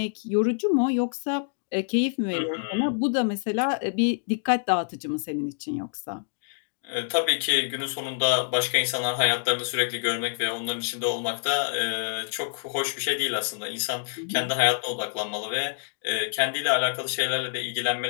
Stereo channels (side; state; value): right; silent; digital silence